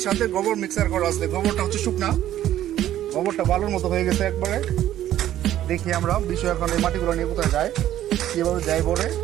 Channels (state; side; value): quieter; left; 12.5 dB